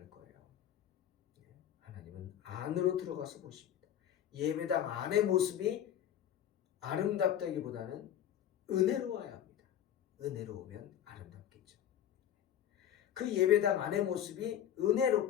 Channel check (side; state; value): right; quieter; 10.3 dB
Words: 거예요. 하나님은 안으로 들어가서 보십니다. 예배당 안의 모습이 아름답다기보다는 은혜로워야 합니다. 은혜로우면 아름답겠죠. 그 예배당 안의 모습이